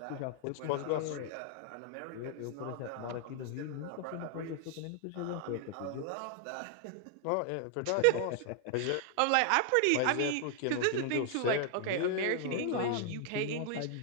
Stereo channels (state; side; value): different; both; correlation 0.00